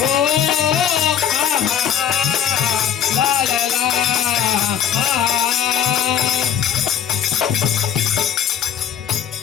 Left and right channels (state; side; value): quieter; right; 9.2 dB